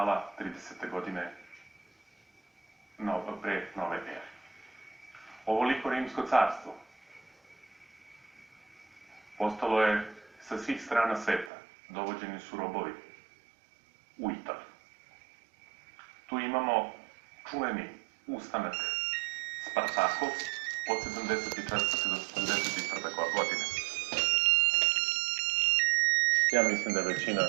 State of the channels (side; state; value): left; drops out; at 11.5 s